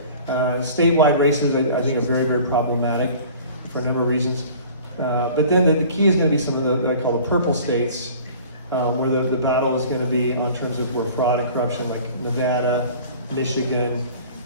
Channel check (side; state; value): both; inverted; correlation -0.46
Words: Statewide races, I think, are very, very problematic for a number of reasons. But then the key is going to be some of the, what I call the purple states, where the battle is going to be on terms of where fraud and corruption, like Nevada, Michigan,